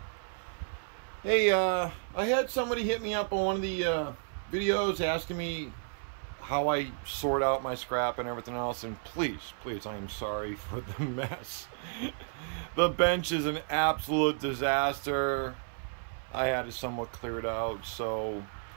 Hey, I had somebody hit me up on one of the videos asking me how I sort out my scrap and everything else, and please, I am sorry for the mess. The bench is an absolute disaster. I had it somewhat cleared out, so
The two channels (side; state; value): left; silent; 56 dB below the other